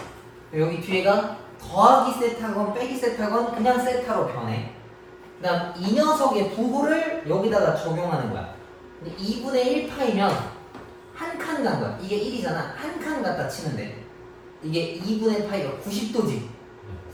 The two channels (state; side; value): identical; both; correlation 1.00